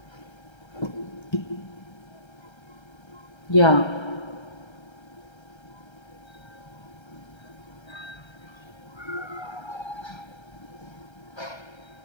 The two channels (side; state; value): right; late; 1.3 ms